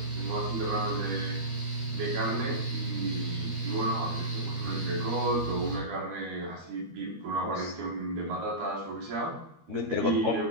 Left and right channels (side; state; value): left; late; 13 ms